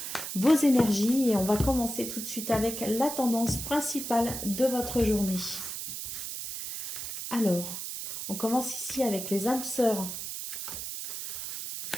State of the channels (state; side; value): noise; right; hiss, 6 dB below the sound